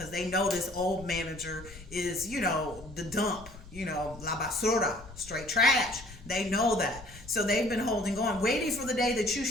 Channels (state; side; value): noise; left; rumble, 17 dB below the sound